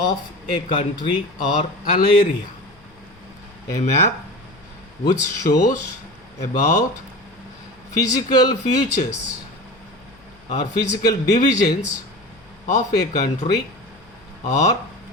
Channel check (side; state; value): left; noise; hum, 30 dB below the sound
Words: a country or an area. A map which shows about physical features or physical divisions of a country, or